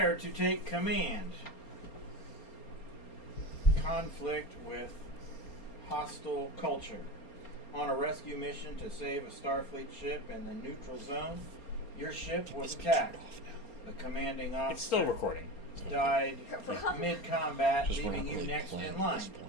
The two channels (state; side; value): late; right; 4.3 ms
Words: to take command. conflict with hostile culture. On a rescue mission to save a Starfleet ship in the neutral zone, your ship was attacked. The commanding officer It's still recording. died mid-combat, Just leaving weren't you really next playing in at line. this